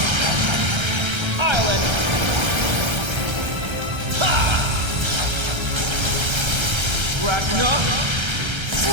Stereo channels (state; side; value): late; left; 1.3 ms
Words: Island. Ha! Ragna.